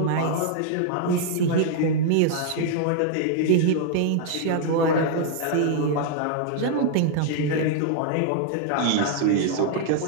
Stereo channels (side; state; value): both; different; correlation -0.01